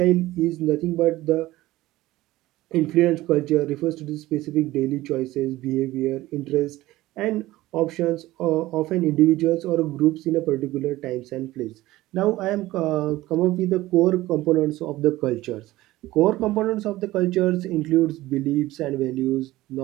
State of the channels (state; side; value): quieter; left; 17.2 dB